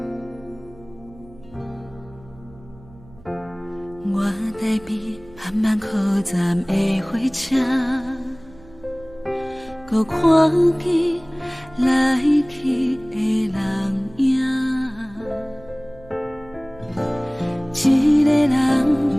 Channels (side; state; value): right; noise; hum, 23 dB below the sound